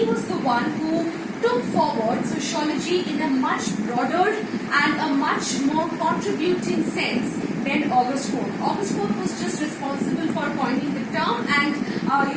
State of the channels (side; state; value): both; identical; correlation 1.00